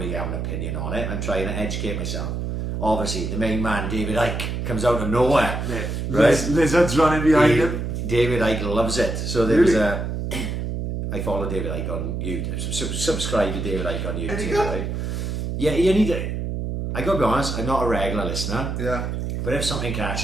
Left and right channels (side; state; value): right; noise; hum, 3 dB below the sound